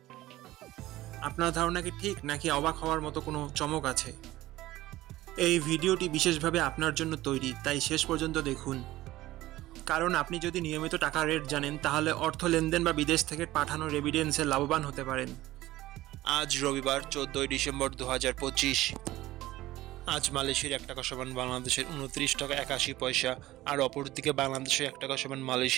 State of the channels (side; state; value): left; quieter; 16.6 dB